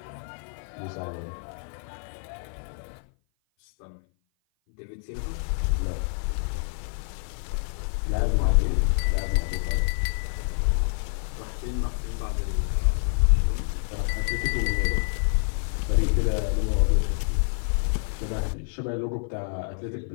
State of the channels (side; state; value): right; silent; 56 dB below the other